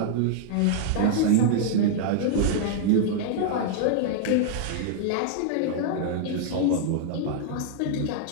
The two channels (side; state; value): both; different; correlation -0.01